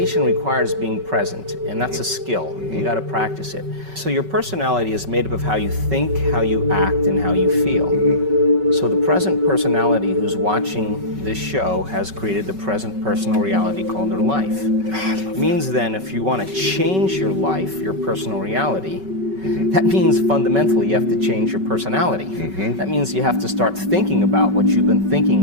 requires being present, and that's a skill. You got to practice it. So your personality is made up of how you think, how you act, and how you feel. So the present personality who's watching this show has created the present personal reality called their life. It means then if you want to change your life, your personal reality, that means fundamentally you have to change your personality. That means you have to start thinking about what you've been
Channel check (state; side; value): late; left; 5.3 ms